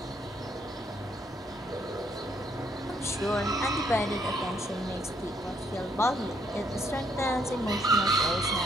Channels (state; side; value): normal; both; correlation 0.71